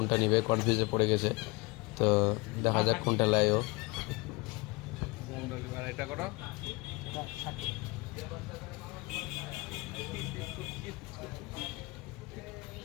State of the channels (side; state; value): right; quieter; 25.0 dB